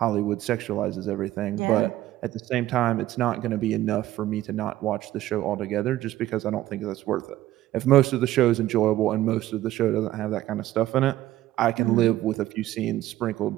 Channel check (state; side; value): quieter; left; 14.7 dB